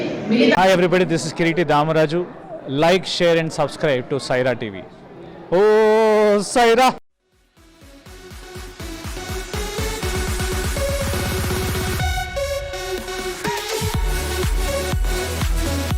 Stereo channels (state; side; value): identical; both; correlation 1.00